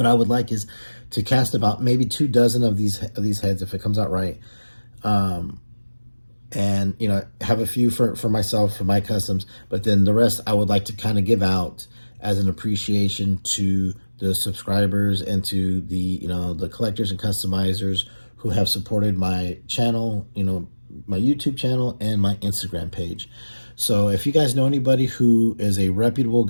I would like is to cast about maybe 2 dozen of these heads, if it comes out right, and have a few for myself, for my customs, but then the rest I would like to kind of give out as an appreciation to the subscribers and to the collectors and customizers who have supported my channel, my YouTube channel and my Instagram page. So if you guys know anybody who is a reputable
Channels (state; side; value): inverted; both; correlation -1.00